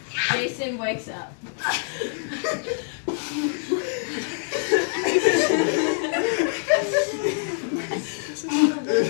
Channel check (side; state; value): right; silent; digital silence